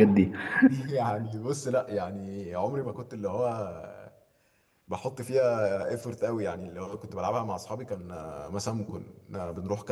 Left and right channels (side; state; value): both; identical; correlation 1.00